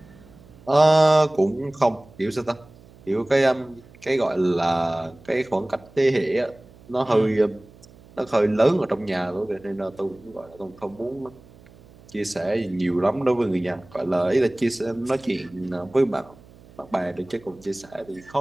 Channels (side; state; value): right; noise; hum, 24 dB below the sound